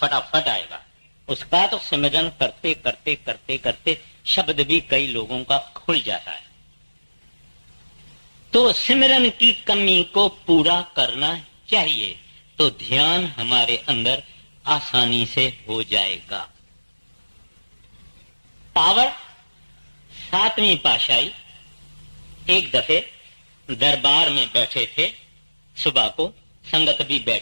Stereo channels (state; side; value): inverted; both; correlation -1.00